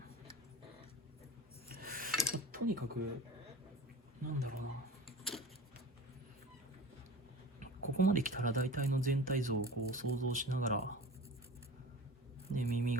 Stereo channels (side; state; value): both; normal; correlation 0.36